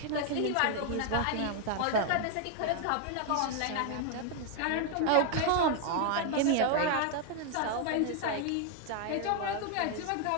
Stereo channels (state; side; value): different; both; correlation 0.00